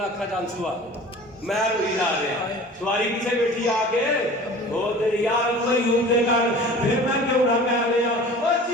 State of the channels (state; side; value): normal; both; correlation 0.41